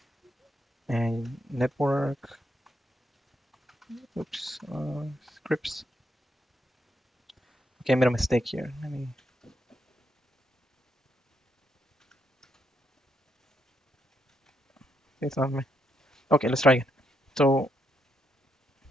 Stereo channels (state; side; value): normal; both; correlation 0.79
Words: and network. Oops, scripts. Okay, I made a mistake here. Let me. It's not me. Okay, let's try again. So